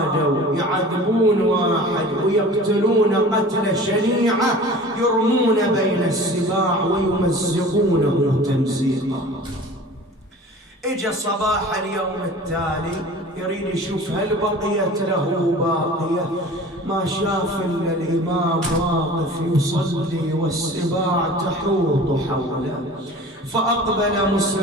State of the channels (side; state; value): both; normal; correlation 0.41